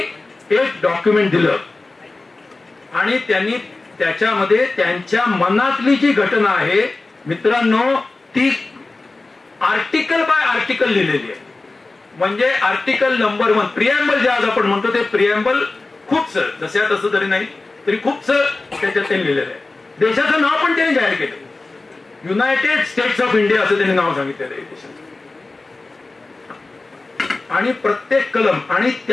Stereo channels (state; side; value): quieter; right; 3.4 dB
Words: एक डॉक्युमेंट दिलं आणि त्यांनी त्याच्यामध्ये त्यांच्या मनातली जी घटना आहे मित्रांनो ती आर्टिकल बाय आर्टिकल लिहिलेली आहे. म्हणजे आर्टिकल नंबर 1 प्रिएम्बल जे आज आपण म्हणतो ते प्रिएम्बल खूपसं जसं तसं जरी नाही तरी खूपसं त्याच्यात त्यांनी लिहिलेलं आहे. देशाचं नाव पण त्यांनी जाहीर केलं, युनायटेड स्टेट्स ऑफ इंडिया असं त्यांनी नाव सांगितलेलं आहे देशाचं. आणि प्रत्येक कलम, आणि